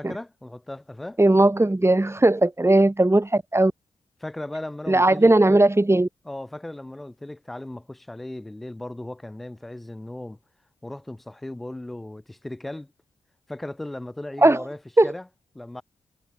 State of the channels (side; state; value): both; normal; correlation 0.91